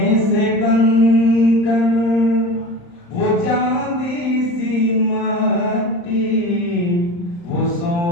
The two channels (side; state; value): right; late; 35 ms